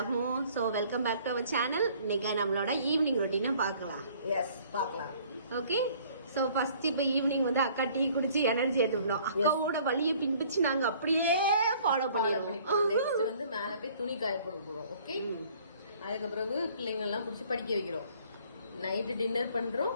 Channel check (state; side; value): inverted; both; correlation -0.56